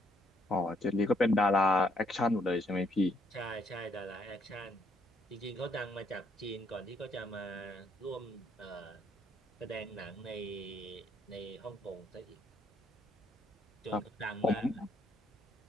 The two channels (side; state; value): both; normal; correlation 0.70